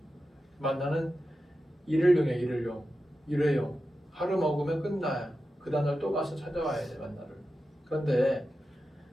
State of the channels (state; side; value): normal; both; correlation 0.91